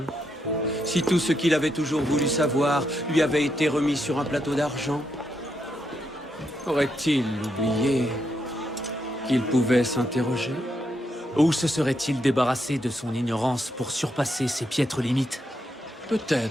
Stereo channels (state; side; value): normal; both; correlation 0.80